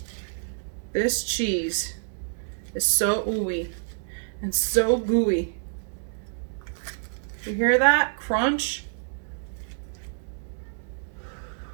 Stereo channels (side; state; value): left; silent; digital silence